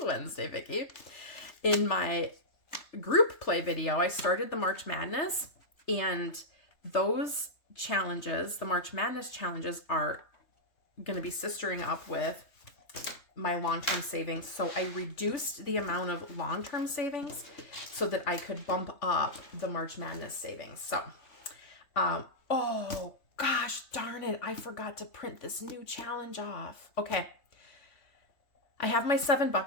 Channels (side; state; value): right; late; 3.3 ms